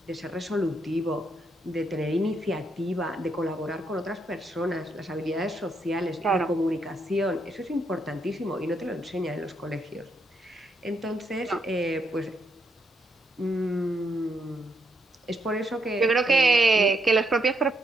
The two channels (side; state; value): both; normal; correlation 0.76